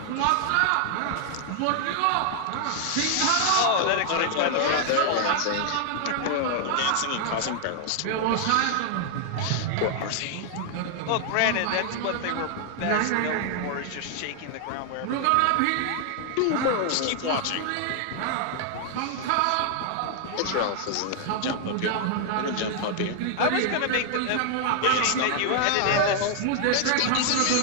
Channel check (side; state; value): both; different; correlation 0.00